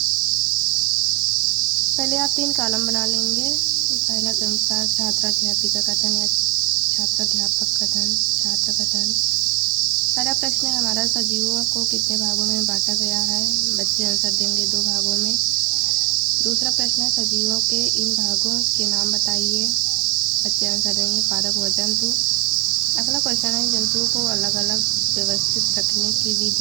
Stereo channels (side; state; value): left; quieter; 25.3 dB